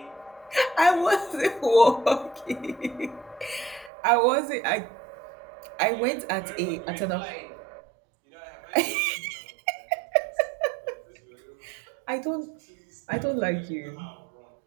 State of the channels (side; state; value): left; drops out; at 3.9 s